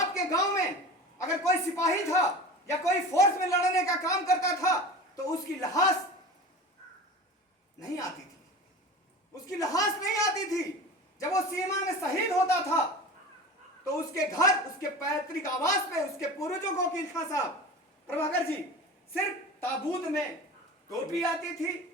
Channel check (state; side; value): normal; both; correlation 0.34